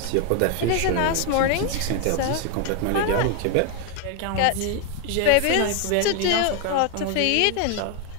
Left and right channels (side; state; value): both; different; correlation 0.01